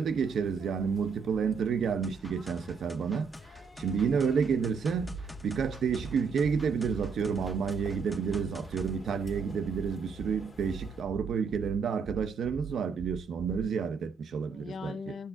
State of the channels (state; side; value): quieter; left; 5.7 dB